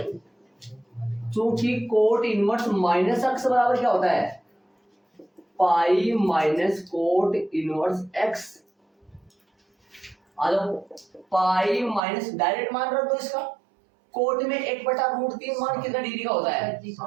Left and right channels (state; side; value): drops out; left; at 12.0 s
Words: चूंकि कोट इनवर्स माइनस एक्स बराबर क्या होता है? Pi minus cot inverse x. आ जाओ, पाई माइनस, डायरेक्ट मान रख दो इसका। कोट में 1/√3 मान कितना डिग्री का होता है?